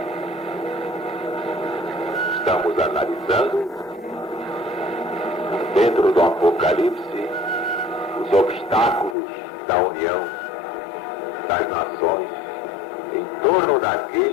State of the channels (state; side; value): drops out; right; at 9.2 s